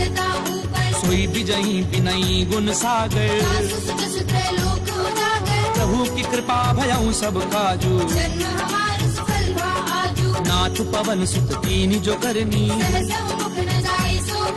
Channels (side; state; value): both; identical; correlation 1.00